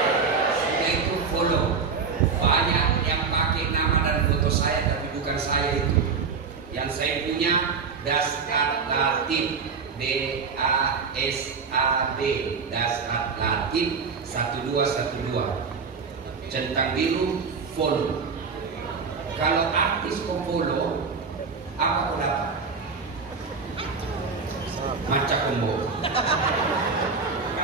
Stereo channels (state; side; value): quieter; left; 5.2 dB